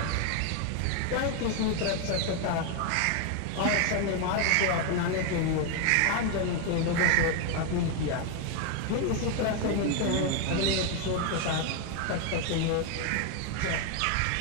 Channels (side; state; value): both; different; correlation 0.01